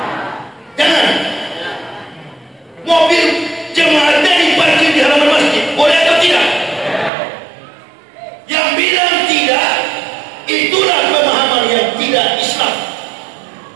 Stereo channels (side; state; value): left; drops out; at 7.1 s